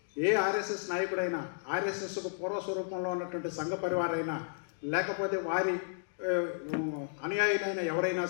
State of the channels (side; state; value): right; silent; digital silence